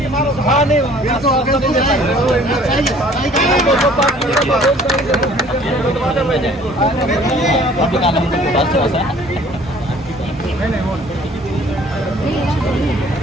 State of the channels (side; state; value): both; normal; correlation 0.54